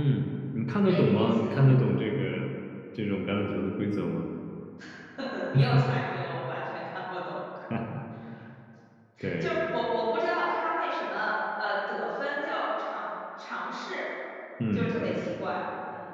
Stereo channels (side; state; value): both; identical; correlation 1.00